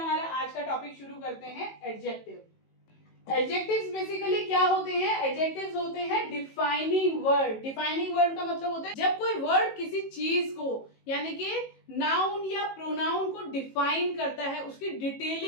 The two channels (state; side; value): late; right; 18 ms